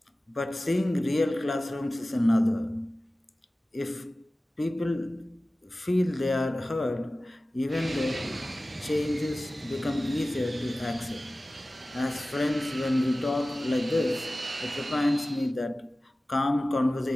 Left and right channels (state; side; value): normal; both; correlation 0.96